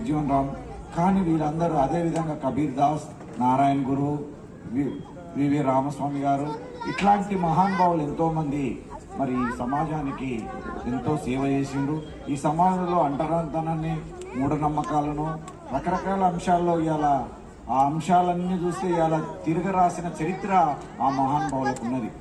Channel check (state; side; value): identical; both; correlation 1.00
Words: రామ్. కానీ వీళ్ళందరూ అదేవిధంగా కబీర్ దాస్, నారాయణ గురు, వివి రామస్వామి గారు, ఇట్లాంటి మహానుభావులు ఎంతోమంది మరి ఈ సమాజానికి ఎంతో సేవ చేసిండ్రు. ఈ సమాజంలో అంటరానితనాన్ని, మూఢనమ్మకాలను, రకరకాల అంశాల్లో ఇవాళ ఆ అంశాలన్నీ చూస్తే ఇవాళ తిరగ రాసిన చరిత్ర ఆ మహానుభావులకు ఉన్నది.